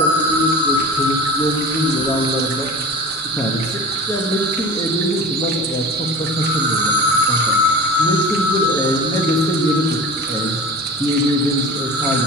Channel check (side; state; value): both; normal; correlation 0.35